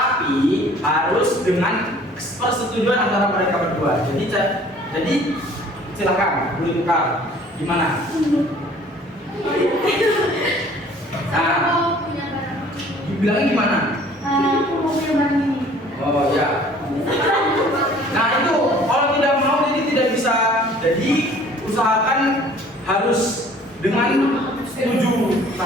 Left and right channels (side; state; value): both; normal; correlation 0.53